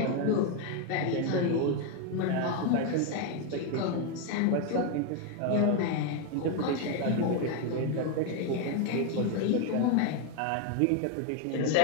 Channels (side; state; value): both; different; correlation 0.01